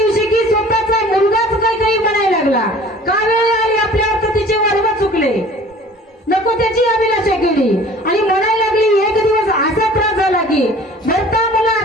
की स्वतःचा मुलगाच कैकेयी म्हणायला लागला. का वेळ आली आपल्यावर तर तिचे वर्ग चुकले, नको त्याची अभिलाषा केली आणि म्हणायला लागली. एक दिवस असा त्रास झाला की भरता मला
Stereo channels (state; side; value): normal; both; correlation 0.47